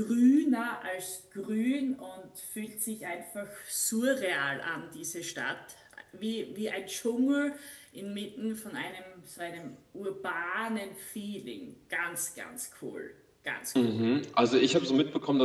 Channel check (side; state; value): both; identical; correlation 1.00